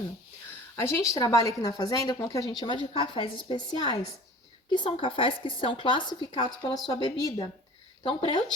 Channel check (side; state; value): both; normal; correlation 0.43